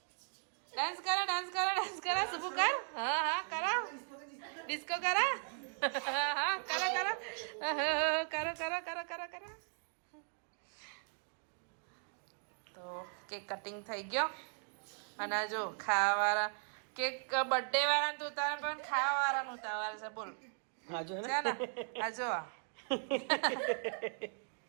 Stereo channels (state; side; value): silent; left; 52 dB below the other